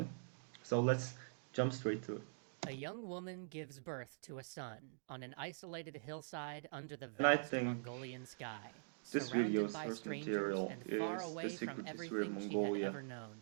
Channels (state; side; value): silent; left; digital silence